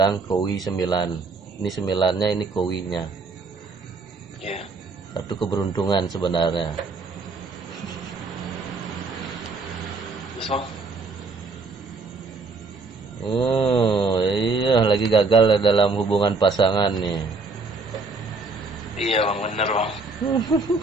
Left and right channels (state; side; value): quieter; left; 3.8 dB